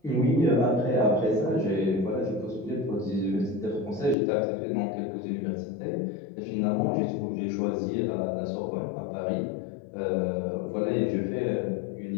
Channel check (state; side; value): drops out; right; at 4.2 s